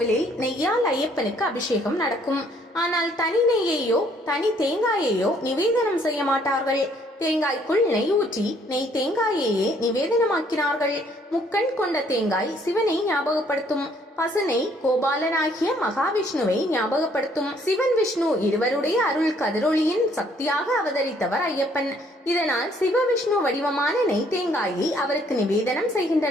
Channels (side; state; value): both; normal; correlation 0.64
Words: நெய்யால் ஐயப்பனுக்கு அபிஷேகம் நடக்கும். ஆனால் தனி நெய்யையோ தனி தேங்காயையோ நிவேதனம் செய்ய மாட்டார்கள். தேங்காய்க்குள் நெய் ஊற்றி நெய் தேங்காயையே நிவேதனமாக்கினார்கள். முக்கண் கொண்ட தேங்காய் சிவனை ஞாபகப்படுத்தும். பசுனை கோபாலனாகிய மகாவிஷ்ணுவை ஞாபகப்படுத்தும். சிவன் விஷ்ணு இருவருடைய அருள் கதிரொளியின் சக்தியாக அவதரித்தவர் ஐயப்பன். இதனால் சிவ விஷ்ணு வடிவமான நெய் தேங்காயை அவருக்கு நிவேதனம்